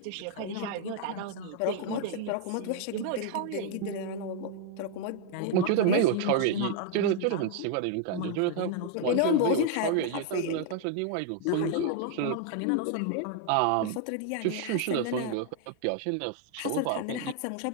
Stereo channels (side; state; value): both; different; correlation 0.00